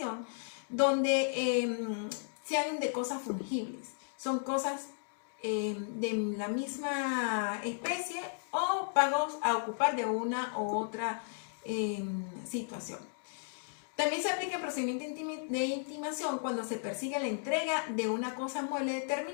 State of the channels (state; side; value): silent; right; digital silence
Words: donde sean de cosas fungibles. Son cosas de la misma especie o pagos a ocupar de una u otra situación. También se aplica el procedimiento de intimación cuando se persigue la entrega de una cosa mueble